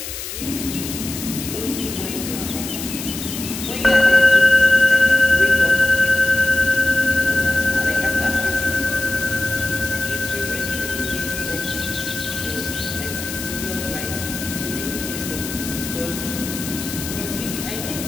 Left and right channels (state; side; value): noise; left; hiss, 8 dB below the sound